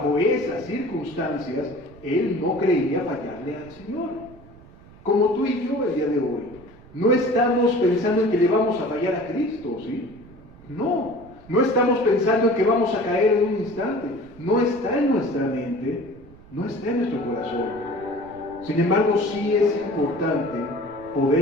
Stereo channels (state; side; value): noise; right; rumble, 22 dB below the sound